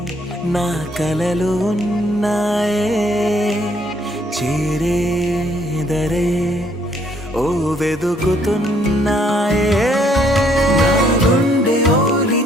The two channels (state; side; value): normal; both; correlation 0.66